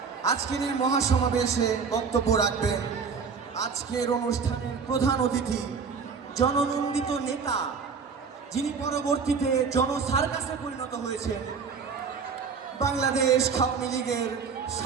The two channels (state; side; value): quieter; left; 5.6 dB